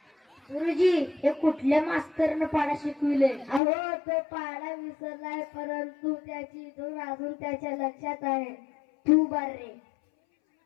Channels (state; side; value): drops out; right; at 3.6 s